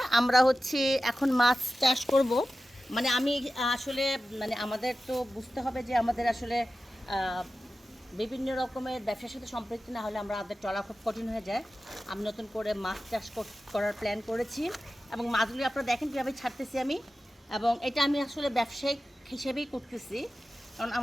আমরা হচ্ছে এখন মাছ চাষ করব। মানে আমি আসলে মানে আমাদের তো বুঝতে হবে যে আমাদের আসলে বিভিন্ন রকমের ব্যবসার সাথে সম্পৃক্ত না হলে আমাদের চলা খুব কঠিন হয়ে যায়। আমি নতুন করে মাছ চাষ করার প্ল্যান করেছি এবং মাছগুলি আপনারা দেখেন কীভাবে ছাড়তেছি আমি, এবং এটা আমি আসলে ব্যবসায়িক হিসেবেই করতেছি। কারণ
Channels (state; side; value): normal; both; correlation 0.94